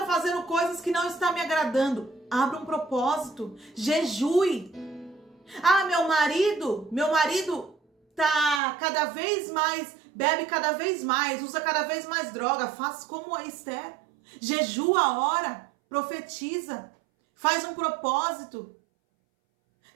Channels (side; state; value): left; drops out; at 8.6 s